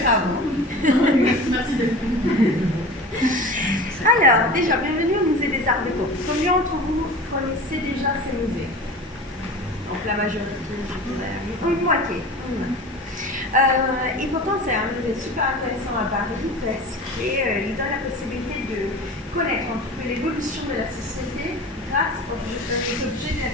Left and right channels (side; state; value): both; normal; correlation 0.35